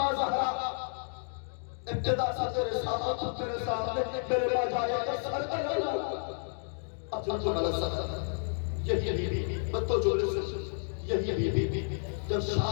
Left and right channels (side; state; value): right; silent; digital silence